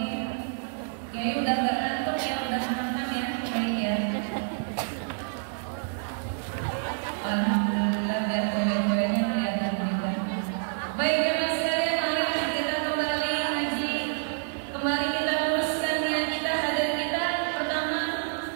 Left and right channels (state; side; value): silent; left; digital silence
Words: Kiai udah gak ngantuk ya, udah makan ya, baik ya. Alhamdulillah, biar cewek-ceweknya kelihatan juga. Baik ya sekalian, mari kita kembali ngaji. Kembali kita teruskan niat kita, hadir kita.